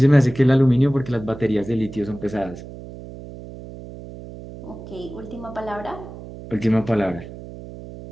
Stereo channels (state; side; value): noise; right; hum, 14 dB below the sound